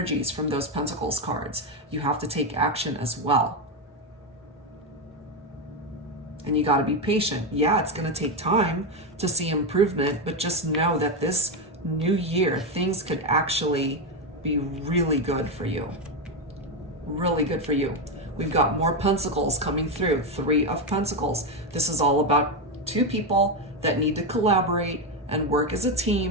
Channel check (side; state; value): both; normal; correlation 0.09